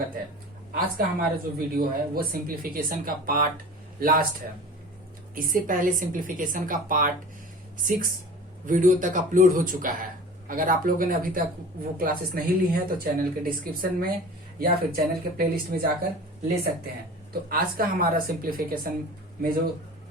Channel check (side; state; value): both; normal; correlation 0.39